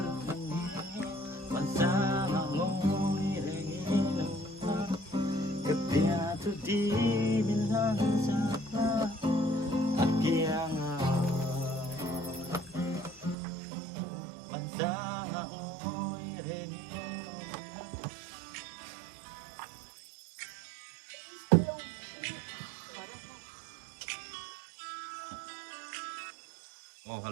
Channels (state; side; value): drops out; left; at 13.4 s